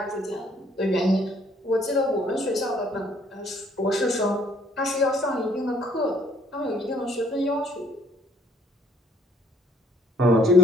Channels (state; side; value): normal; both; correlation 0.63